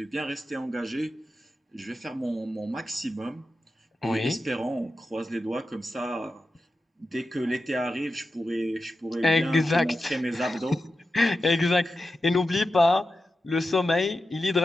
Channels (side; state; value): both; normal; correlation 0.91